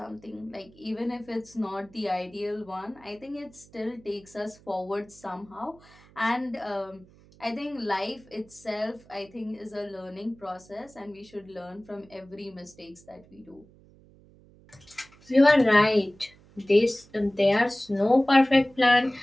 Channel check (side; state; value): right; noise; hum, 26 dB below the sound